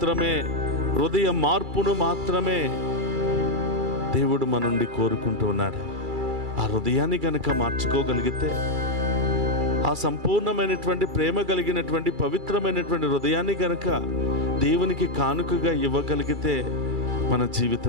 హృదయ మార్పును మాత్రమే దేవుడు మన నుండి కోరుకుంటూ ఉన్నాడు. ఆ హృదయాన్ని కనుక మార్చుకోగలిగితే, ఆ సంపూర్ణమైనటువంటి ప్రేమ కలిగినటువంటి పవిత్రమైనటువంటి హృదయాన్ని కనుక దేవునికి కానుకగా ఇవ్వగలిగితే మన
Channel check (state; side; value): late; left; 2.3 ms